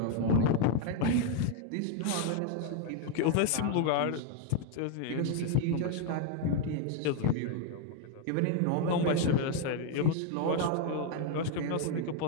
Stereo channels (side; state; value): both; different; correlation 0.01